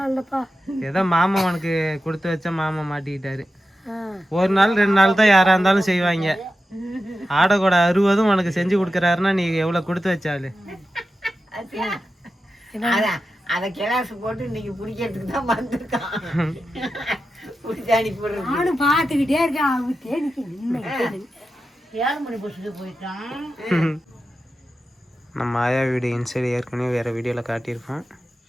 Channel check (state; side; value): normal; both; correlation 0.91